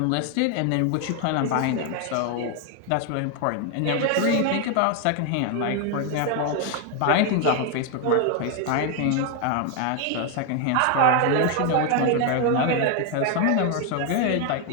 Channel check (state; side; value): different; both; correlation 0.01